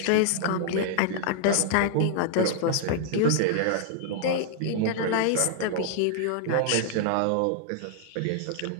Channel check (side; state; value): both; different; correlation 0.00